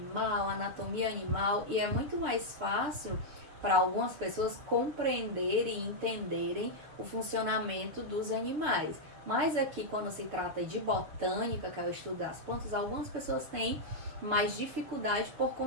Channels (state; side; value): late; left; 6.8 ms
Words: anatomia animal, e é muito mais fácil para algumas pessoas compreenderem e entenderem o funcionamento dos animais. Mas aqui, quando se trata de botânica, que é o estudo das plantas, algumas pessoas têm mais dificuldade por